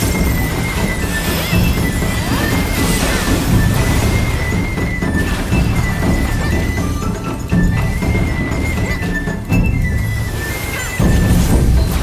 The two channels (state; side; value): identical; both; correlation 1.00